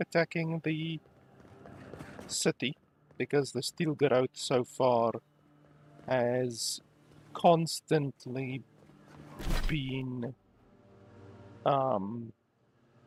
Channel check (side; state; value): both; identical; correlation 1.00